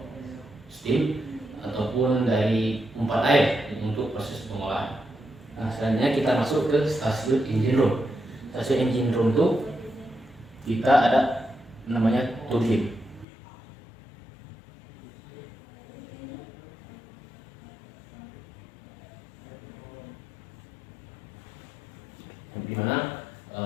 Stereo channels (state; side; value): drops out; right; at 13.2 s